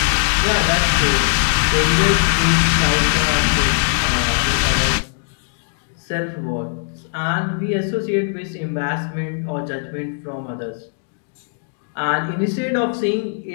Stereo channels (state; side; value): silent; right; digital silence